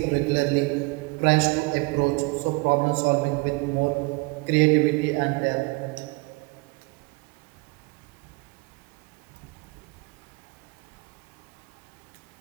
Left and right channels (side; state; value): left; quieter; 26.5 dB